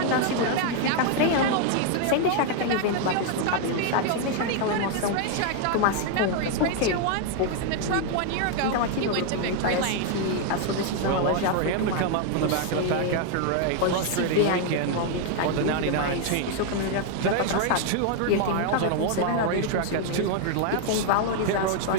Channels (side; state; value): both; different; correlation 0.00